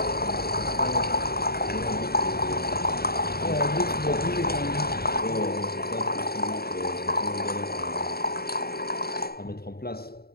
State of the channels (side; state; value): right; late; 0.45 ms